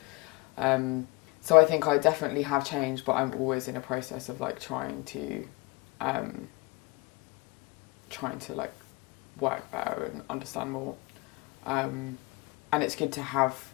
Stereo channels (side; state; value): right; quieter; 24.6 dB